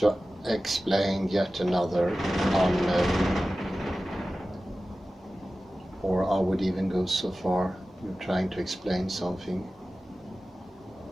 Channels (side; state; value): both; normal; correlation 0.95